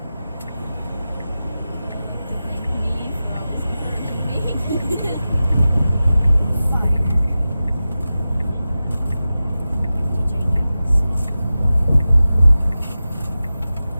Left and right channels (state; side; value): inverted; both; correlation -0.94